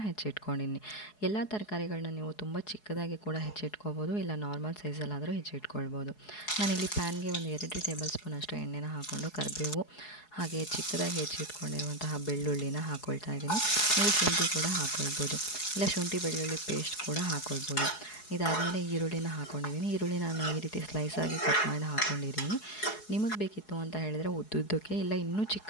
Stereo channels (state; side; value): late; right; 4.7 ms